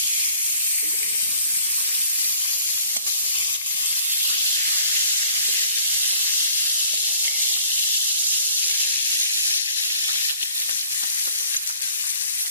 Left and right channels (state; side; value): inverted; both; correlation -0.55